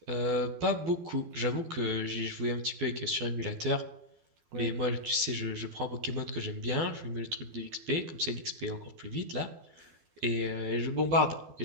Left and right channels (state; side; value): late; left; 12 ms